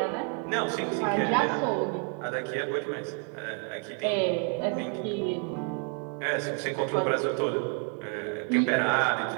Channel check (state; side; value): quieter; left; 38.8 dB